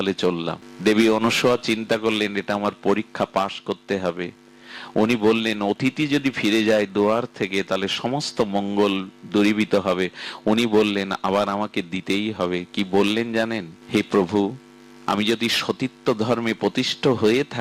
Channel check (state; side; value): identical; both; correlation 1.00